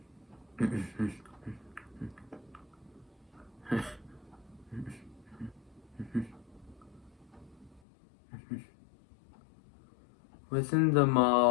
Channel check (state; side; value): drops out; right; at 7.8 s